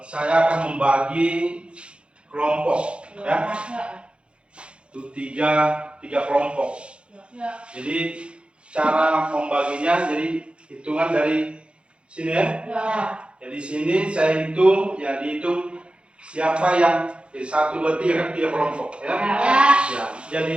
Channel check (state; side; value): late; left; 0.057 ms